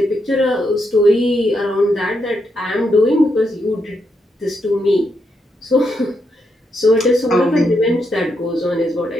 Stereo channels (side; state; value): both; normal; correlation 0.81